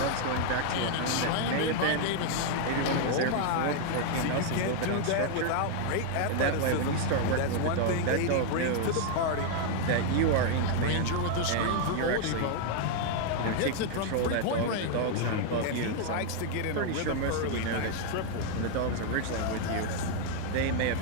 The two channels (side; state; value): both; different; correlation 0.00